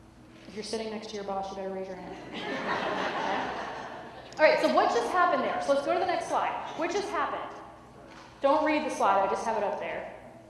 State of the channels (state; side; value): identical; both; correlation 1.00